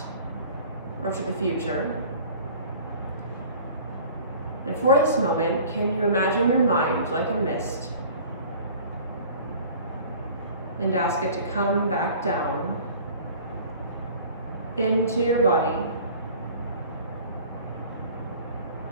or to the future. And for this moment, can you imagine your mind like a mist and ask it to come back down into your body,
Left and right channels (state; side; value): inverted; both; correlation -0.46